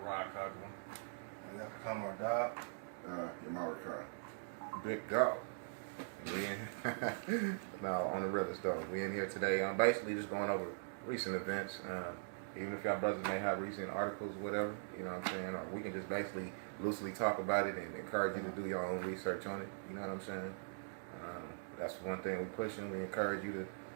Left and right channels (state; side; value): silent; left; digital silence